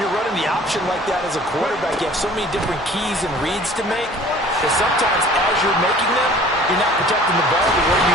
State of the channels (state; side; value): normal; both; correlation 0.49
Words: you're running the option like that as a quarterback, you have so many different keys and reads to make that sometimes as you're making them, you're not protecting the ball the way